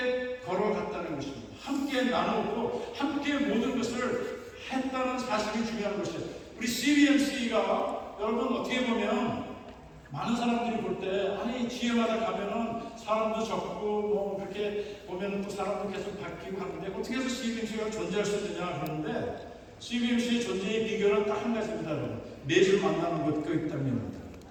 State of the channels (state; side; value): identical; both; correlation 1.00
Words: 걸어갔다는 것입니다. 함께 나누고 함께 모든 것을 했다는 사실이 중요한 것이에요. 우리 CBMC가 여러분 어떻게 보면 많은 사람들이 볼 때, 아니 지혜마다 가면은 사람도 적고 뭐 그렇게 보면은 또 사람도 계속 바뀌고 하는데 어떻게 해서 CBMC가 존재할 수 있느냐 그러는데, CBMC의 존재의 비결은 딱 한 가지입니다. 여러분, 매주 만나는 것이기 때문입니다.